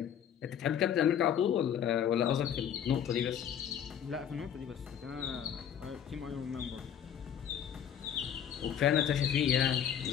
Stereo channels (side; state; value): right; quieter; 8.9 dB